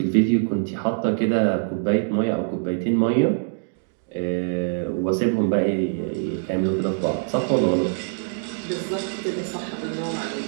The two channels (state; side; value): silent; left; digital silence